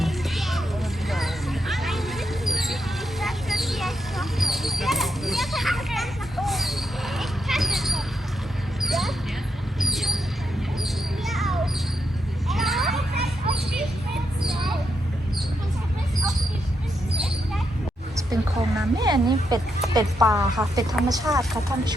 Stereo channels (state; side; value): normal; both; correlation 0.80